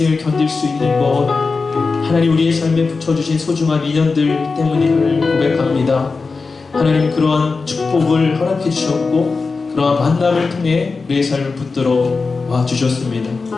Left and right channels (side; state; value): right; quieter; 4.3 dB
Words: 견딜 수 있는 것, 하나님 우리의 삶에 붙여주신 소중한 인연들 때문임을 고백합니다. 하나님, 그러한 축복을 허락해 주셨고 그러한 만남을 통해 우리의 삶을 붙들어 와 주셨습니다.